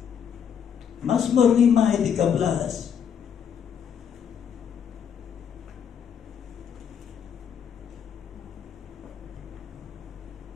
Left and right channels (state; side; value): quieter; right; 7.9 dB